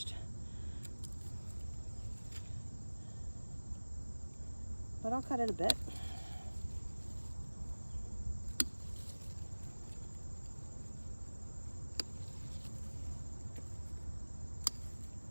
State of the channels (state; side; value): inverted; both; correlation -1.00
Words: But I'll cut it a bit.